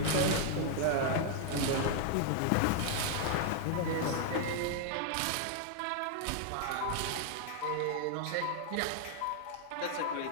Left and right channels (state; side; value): different; both; correlation 0.00